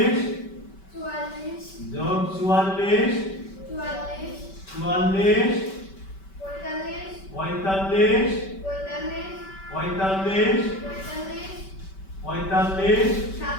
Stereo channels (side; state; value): right; late; 5.2 ms